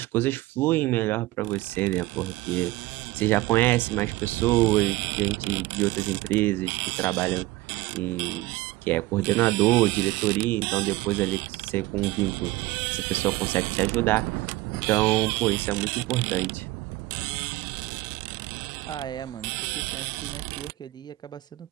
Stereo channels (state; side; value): quieter; left; 18.7 dB